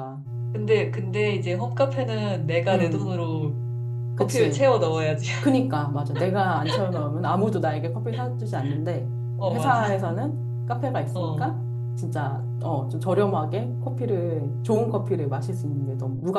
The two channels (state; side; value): identical; both; correlation 1.00